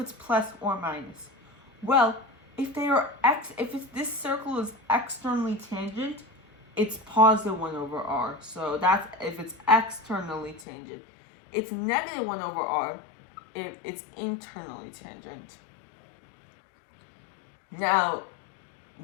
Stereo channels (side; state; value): right; drops out; at 10.7 s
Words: plus or minus? Well, if this circle is externally tangent, it's positive 1 over r. So that's if it's externally tangent. It's negative 1 over r if it's internally tangent. Now,